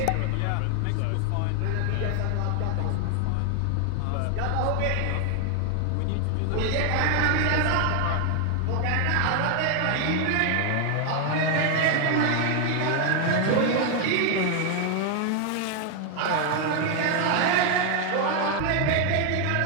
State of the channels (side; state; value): both; different; correlation 0.01